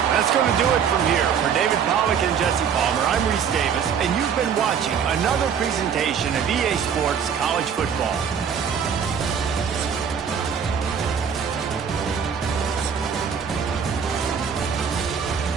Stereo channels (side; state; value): left; quieter; 7.3 dB